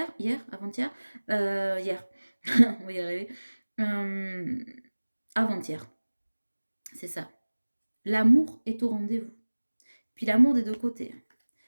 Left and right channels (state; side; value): inverted; both; correlation -1.00